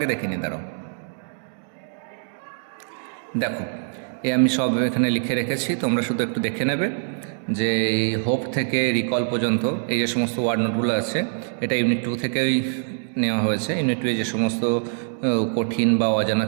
দেখে নিই। দাঁড়াও, দেখো আমি সব এখানে লিখে রেখেছি, তোমরা শুধু একটু দেখে নেবে যে এই হোপ থেকে রিকল পর্যন্ত এই যে সমস্ত ওয়ার্ড নোটগুলো আছে এটা ইউনিট 2 থেকেই নেওয়া হয়েছে। ইউনিট 2 এ যে সমস্ত কঠিন বা অজানা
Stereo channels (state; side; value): silent; left; digital silence